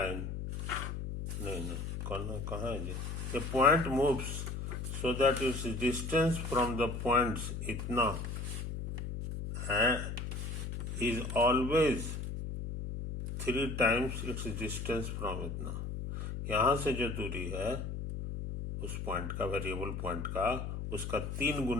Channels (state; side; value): noise; left; hum, 5 dB below the sound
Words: नहीं कहाँ है जी। A point moves so that its distance from the points इतना is always 3 times its distance from इतना। यहाँ से जो दूरी है उस पॉइंट का, वेरिएबल पॉइंट का, उसका 3